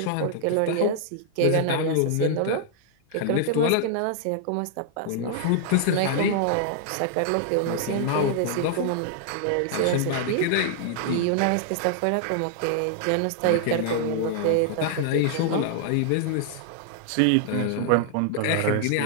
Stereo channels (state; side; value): different; both; correlation -0.01